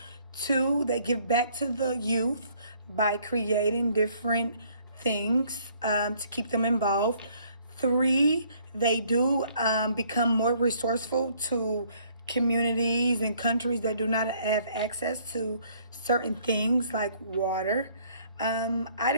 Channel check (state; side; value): inverted; both; correlation -0.62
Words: Two, they give back to the youth by creating different things to keep them involved. Three, they do become more resourceful to communities and countries that do not have access to certain things like water. I